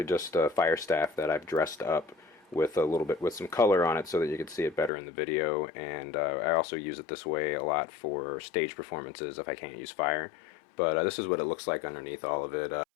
just a fire staff that I've dressed up with a little bit with some color on it so that you could see it better in the video, and I also use it this way a lot for stage performances if I can't use fire. But this is what it looks like underneath all of it.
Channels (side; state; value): right; drops out; at 4.9 s